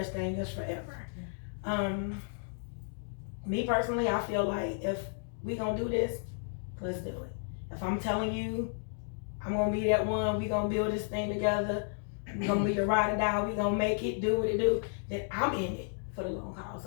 thing as forever. Me personally, I feel like if we gonna do this, let's do it. If I'm telling you I'm gonna be that one, we gonna build this thing together, we gonna be your ride or die, we gonna make it, do what it do, then I'm in it for the long haul.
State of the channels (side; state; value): right; silent; digital silence